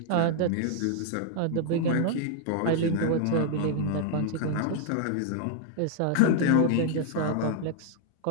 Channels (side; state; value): both; different; correlation 0.00